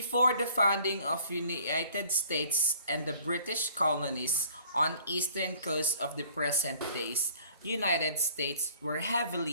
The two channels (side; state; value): both; inverted; correlation -0.55